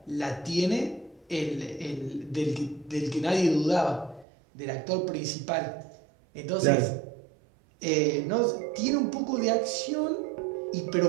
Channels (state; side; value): drops out; left; at 4.2 s